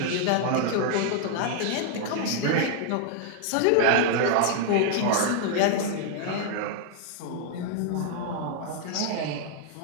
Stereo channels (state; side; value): different; both; correlation 0.00